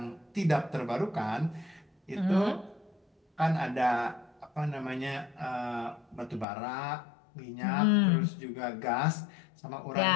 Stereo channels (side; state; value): right; drops out; at 6.5 s